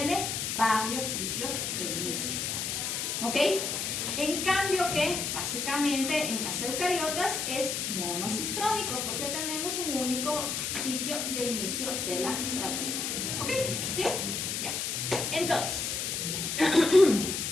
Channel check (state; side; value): noise; left; hiss, 1 dB below the sound